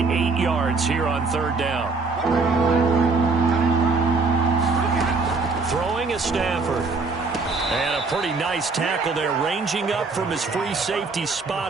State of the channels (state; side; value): quieter; left; 4.1 dB